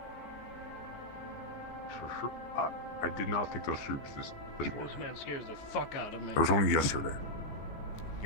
Sure. I did not think those troops this This man scares the fuck out of me. It was only yesterday.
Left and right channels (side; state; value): right; late; 15 ms